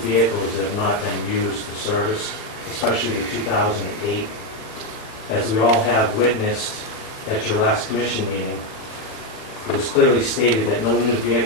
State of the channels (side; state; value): right; late; 40 ms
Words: that have not been used for service, especially the 2008. As we all have witnessed at your last commission meeting, it was clearly stated that no new